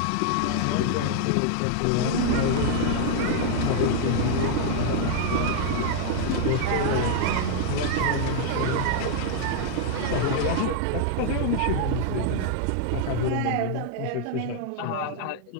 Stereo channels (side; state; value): both; different; correlation 0.00